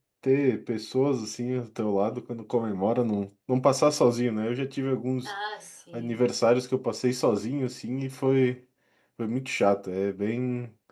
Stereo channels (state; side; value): identical; both; correlation 1.00